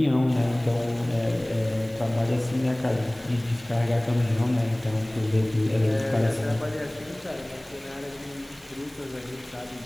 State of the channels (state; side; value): noise; right; hiss, 25 dB below the sound